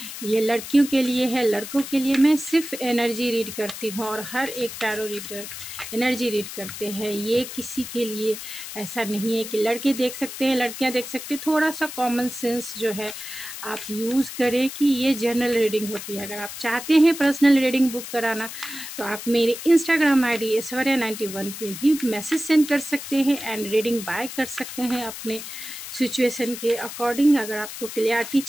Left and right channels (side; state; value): left; noise; hiss, 10 dB below the sound